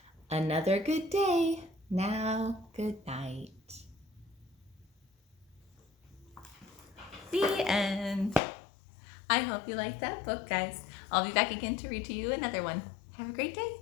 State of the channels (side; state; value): right; drops out; at 8.4 s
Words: Another good day. Now, good night. The end. I hope you liked that book, guys. I'll be back again to read to you another one. Have a great day.